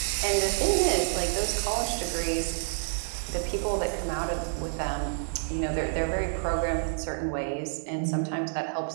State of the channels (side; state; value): left; silent; digital silence